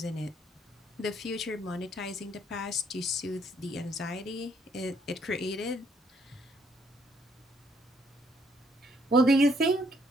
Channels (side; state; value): both; normal; correlation 0.69